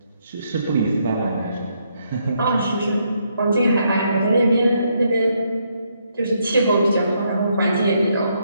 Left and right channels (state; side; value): inverted; both; correlation -0.75